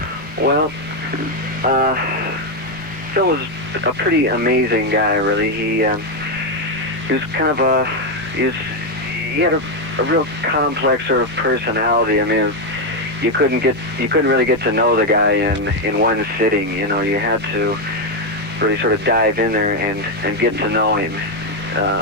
Well, Phil was a pretty amazing guy, really. He was kind of he had a real complex sort of personality. I mean, you couldn't really get to know the guy in one sitting. You know, you had to really sort of dive in there and get to know him.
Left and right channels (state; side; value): normal; both; correlation 0.05